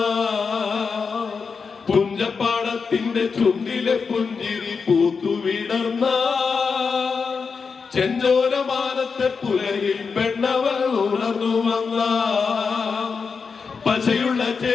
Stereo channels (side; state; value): right; quieter; 5.3 dB